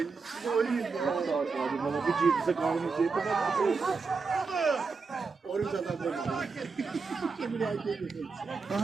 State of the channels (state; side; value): quieter; left; 4.6 dB